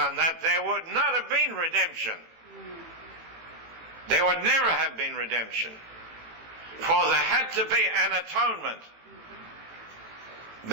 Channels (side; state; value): left; late; 18 ms